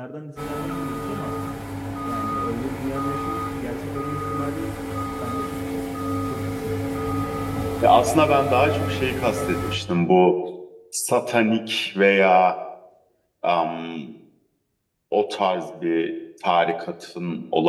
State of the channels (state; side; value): identical; both; correlation 1.00